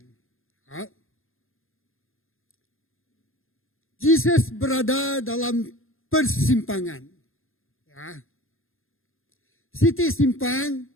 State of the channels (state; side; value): late; right; 0.60 ms